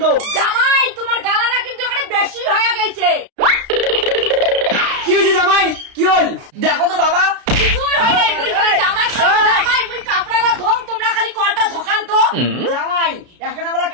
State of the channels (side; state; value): left; late; 33 ms